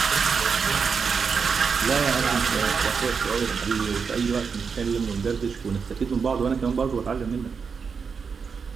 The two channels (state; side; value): quieter; left; 5.8 dB